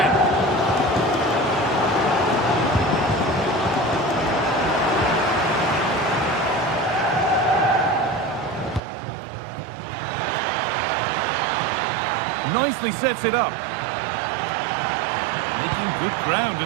Nicely sets it up. Making good ground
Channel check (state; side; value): drops out; left; at 8.8 s